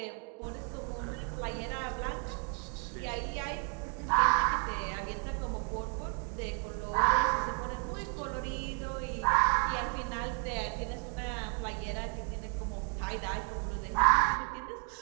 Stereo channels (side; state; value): left; quieter; 38.2 dB